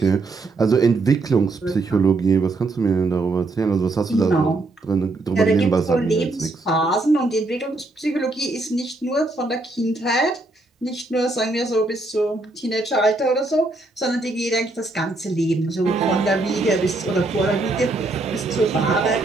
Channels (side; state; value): left; quieter; 3.1 dB